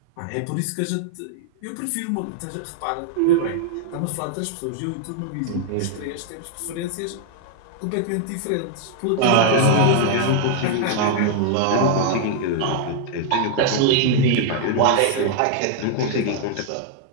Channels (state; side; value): different; both; correlation -0.01